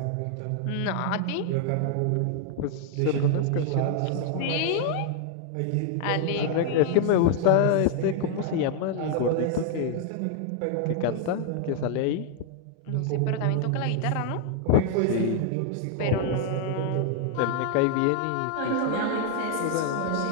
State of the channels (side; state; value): both; different; correlation 0.00